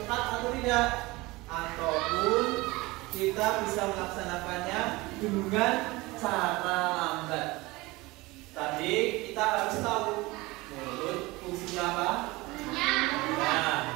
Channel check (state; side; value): quieter; left; 21.8 dB